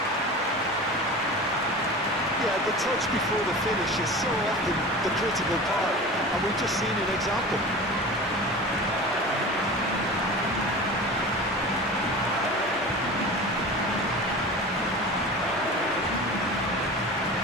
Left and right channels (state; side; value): normal; both; correlation 0.34